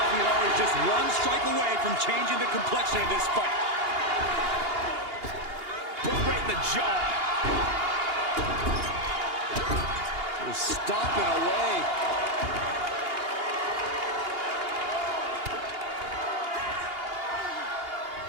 always just one strike away from changing the complexion of this fight. Boot right in the jaw. Stomping away.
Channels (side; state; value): left; late; 2.8 ms